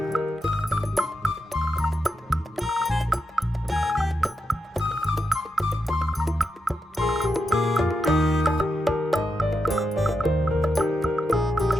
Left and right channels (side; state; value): both; normal; correlation 0.86